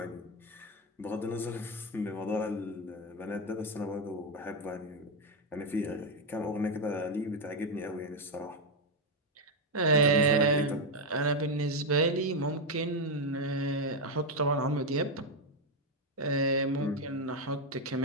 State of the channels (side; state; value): both; normal; correlation 0.05